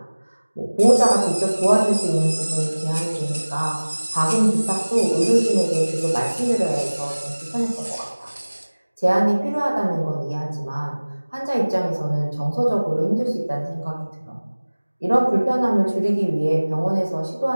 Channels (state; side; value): inverted; both; correlation -1.00